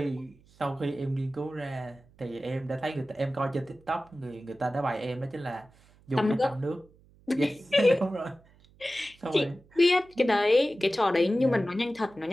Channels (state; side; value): noise; right; hum, 28 dB below the sound